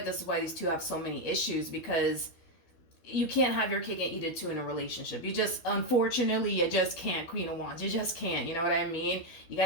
this is why these two have so many issues, because you can't have your cake and eat it too in a relationship. Unfortunately, you just can't, Queen of Wands. You just can't. You know what I mean? You got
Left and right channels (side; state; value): right; late; 12 ms